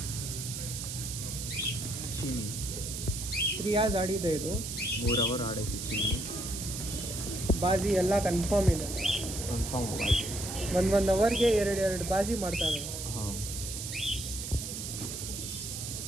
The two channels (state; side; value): noise; right; hiss, 6 dB below the sound